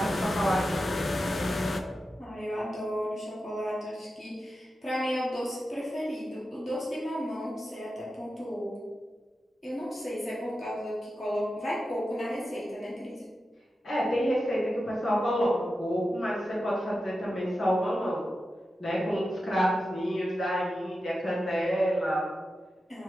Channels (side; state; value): both; normal; correlation 0.91